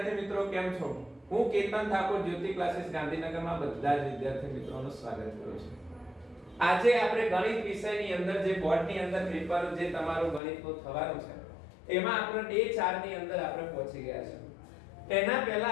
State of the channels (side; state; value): right; drops out; at 10.4 s